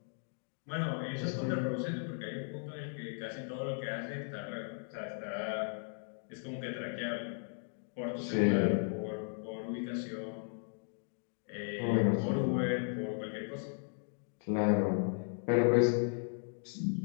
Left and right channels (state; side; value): silent; right; 54 dB below the other